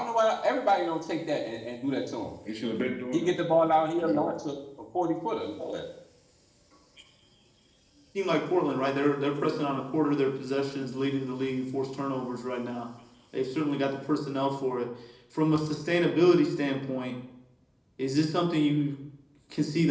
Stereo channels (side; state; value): both; identical; correlation 1.00